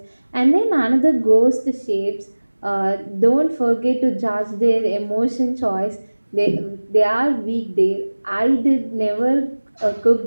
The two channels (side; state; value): both; inverted; correlation -1.00